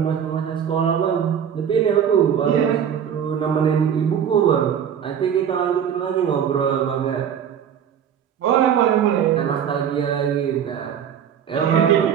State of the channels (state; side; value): quieter; left; 8.6 dB